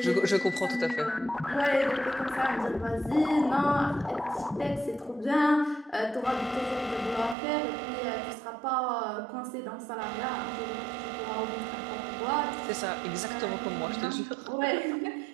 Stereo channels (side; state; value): left; drops out; at 7.4 s